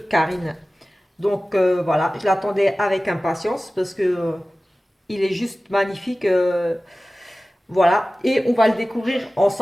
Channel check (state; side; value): normal; both; correlation 0.97